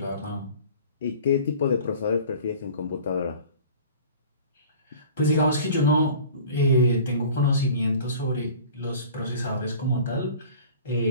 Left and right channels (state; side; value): inverted; both; correlation -0.44